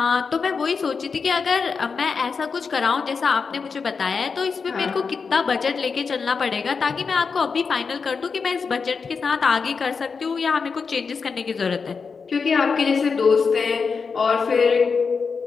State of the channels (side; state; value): right; quieter; 5.3 dB